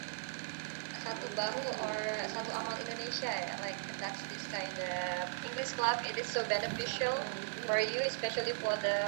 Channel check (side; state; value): left; silent; digital silence